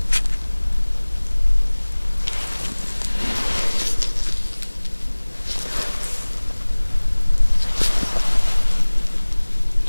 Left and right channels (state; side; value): inverted; both; correlation -1.00